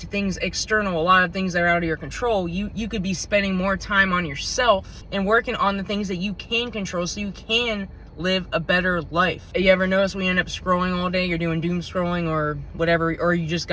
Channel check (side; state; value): both; identical; correlation 1.00